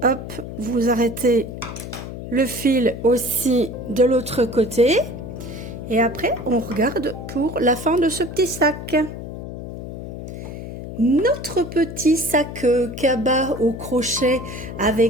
Hop, vous arrêtez le fil aussi de l'autre côté et après on regarde pour la fin de ce petit sac. Notre petit sac cabas au crochet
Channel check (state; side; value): noise; left; hum, 9 dB below the sound